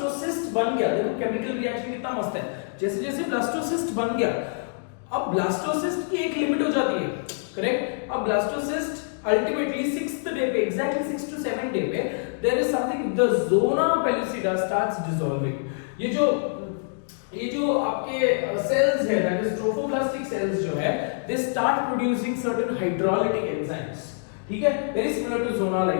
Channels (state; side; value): silent; right; digital silence